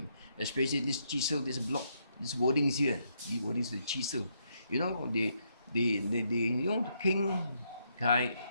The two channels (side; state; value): both; inverted; correlation -0.76